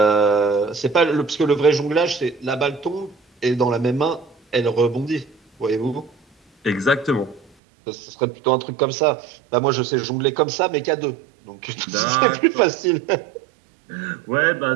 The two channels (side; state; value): left; drops out; at 7.5 s